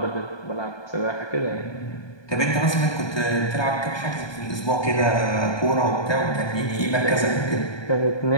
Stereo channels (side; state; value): right; late; 1.2 ms